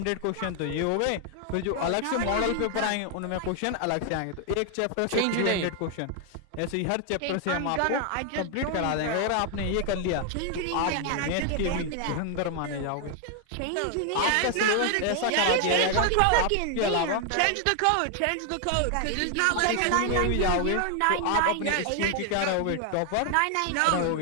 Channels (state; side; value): different; both; correlation 0.00